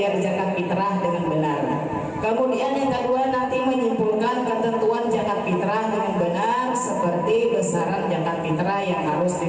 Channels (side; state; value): both; identical; correlation 1.00